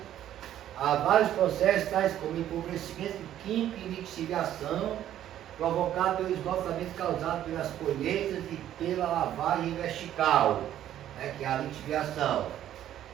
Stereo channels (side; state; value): left; quieter; 11.7 dB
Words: a vários processos, tais como empobrecimento químico e lixiviação, provocado pelo esgotamento causado pelas colheitas e pela lavagem vertical, que é a lixiviação.